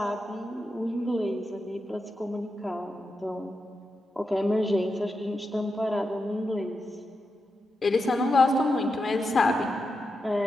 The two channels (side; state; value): both; normal; correlation 0.88